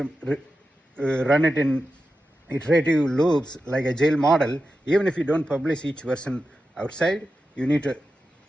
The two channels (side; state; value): both; normal; correlation 0.91